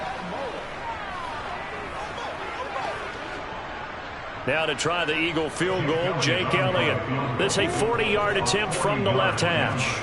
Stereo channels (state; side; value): identical; both; correlation 1.00